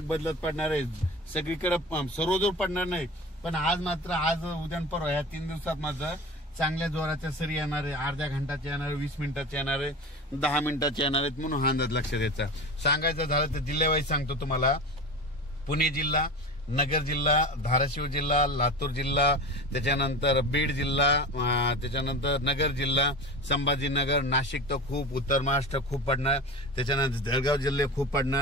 बदलत पडणार आहेत. सगळीकडे सर्वजोर पडणार नाही, पण आज मात्र आज उद्या परवा या 3 दिवसात मात्र चांगल्या जोराच्या सरी येणार आहे. अर्ध्या घंटाच्या येणार आहे, 20 मिनिटाच्या येणार आहे, 10 मिनिटाच्या येणार आहेत. म्हणून हा अंदाज लक्षात द्यायचा. सांगायचं झालं तर जिल्ह्यावाईज सांगतो तुम्हाला. पुणे जिल्हा, नगर जिल्हा, धाराशिव जिल्हा, लातूर जिल्हा, त्याच्यानंतर बीड जिल्हा, त्याच्यानंतर नगर जिल्हा, संभाजीनगर, नाशिक तर खूप, उत्तर महाराष्ट्र खूप पडणार, त्याच्यानंतर जळगाव जिल्हे खूप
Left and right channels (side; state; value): both; normal; correlation 0.31